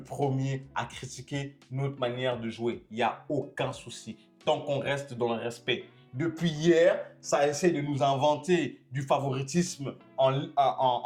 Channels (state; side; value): identical; both; correlation 1.00